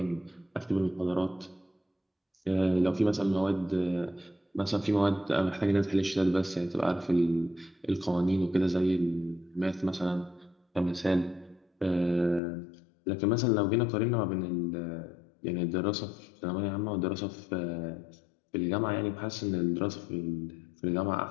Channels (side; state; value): right; drops out; at 12.4 s